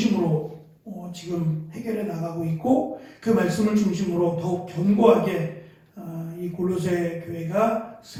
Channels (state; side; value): identical; both; correlation 1.00